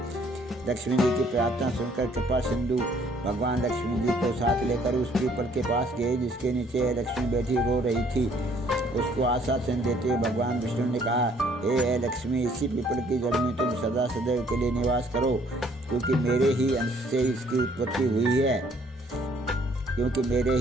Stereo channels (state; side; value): normal; both; correlation 0.62